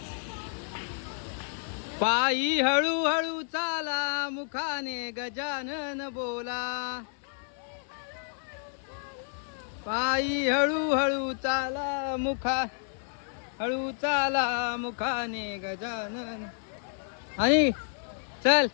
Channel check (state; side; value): silent; right; digital silence